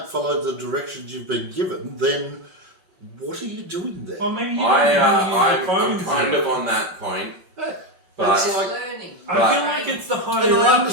follow the directions you've been given, then what are you doing there? Well, maybe you don't know how to use the I'm phones. kind yet. of on that point, Hey, but it's like, Learning. I feel like it's the and higher I up you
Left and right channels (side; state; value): left; late; 5.3 ms